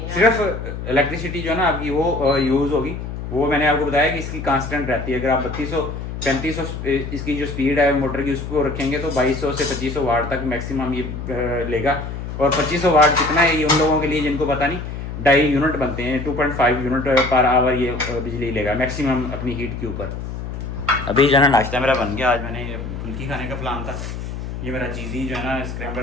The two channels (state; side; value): noise; left; hum, 7 dB below the sound